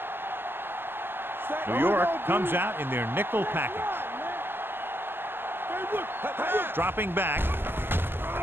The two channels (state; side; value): late; left; 0.10 ms